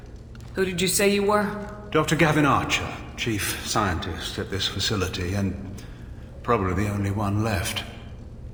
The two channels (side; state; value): both; identical; correlation 1.00